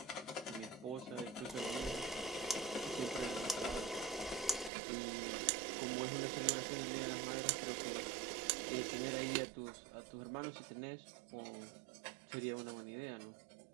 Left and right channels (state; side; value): drops out; left; at 4.7 s